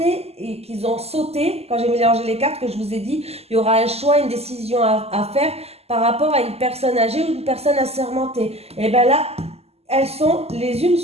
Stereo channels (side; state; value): left; late; 0.29 ms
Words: et qui ont sauté quand j'ai mélangé les cartes que je vous ai dit. Il y aura un choix, une décision à faire par rapport à une personne âgée ou une personne assermentée. Et bien là, elles sont les unes